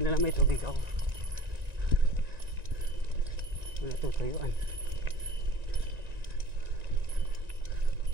na lang may tubig ako. Wala tutuyuan.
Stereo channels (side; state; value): left; late; 1.9 ms